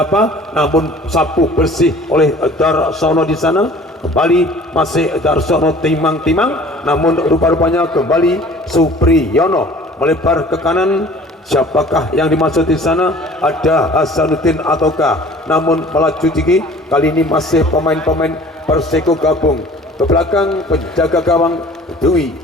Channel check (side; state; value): both; normal; correlation 0.48